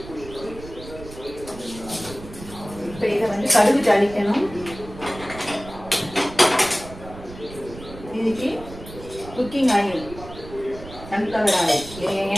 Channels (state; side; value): noise; right; rumble, 15 dB below the sound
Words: இப்போ இதை வந்து கடுகு தாளிக்கணும். இதுக்கு குக்கிங் ஆயில், சன்ஃப்ளவர் ஆயில்,